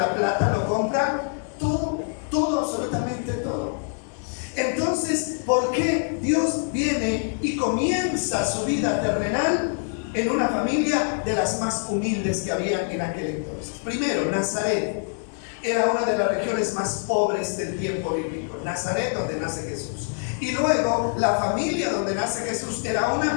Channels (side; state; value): right; silent; 60 dB below the other